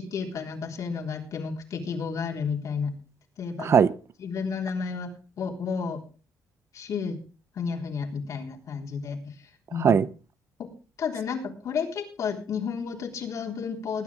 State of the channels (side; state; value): both; normal; correlation 0.66